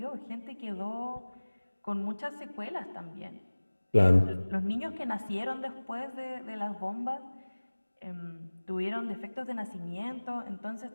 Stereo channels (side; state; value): both; inverted; correlation -1.00